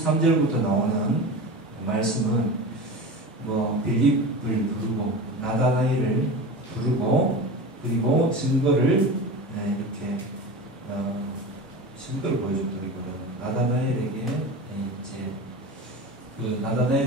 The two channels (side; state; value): both; normal; correlation 0.29